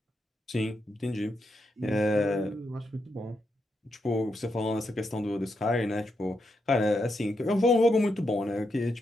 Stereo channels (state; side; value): normal; both; correlation 0.82